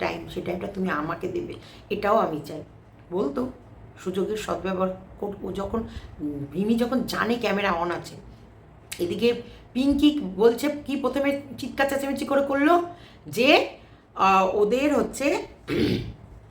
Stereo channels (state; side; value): identical; both; correlation 1.00